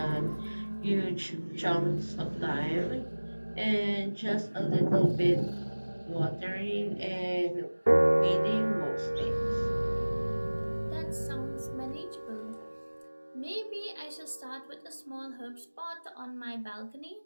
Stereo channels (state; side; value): inverted; both; correlation -1.00